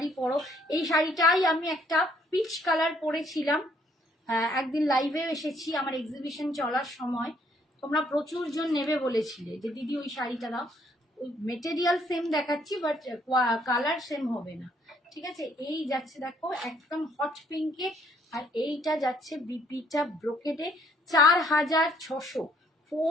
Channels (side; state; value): both; normal; correlation 0.66